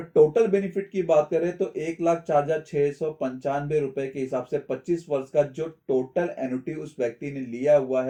टोटल बेनिफिट की बात करें तो 1,04,695 रुपए के हिसाब से 25 वर्ष का जो टोटल एन्युटी उस व्यक्ति ने लिया हुआ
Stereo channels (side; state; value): both; identical; correlation 1.00